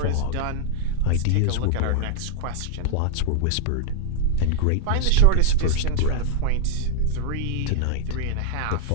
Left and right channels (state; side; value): different; both; correlation -0.01